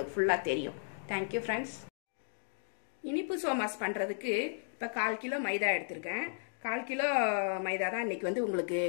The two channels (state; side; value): silent; right; digital silence